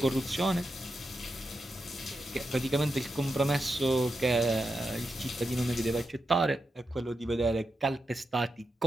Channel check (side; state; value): both; normal; correlation 0.87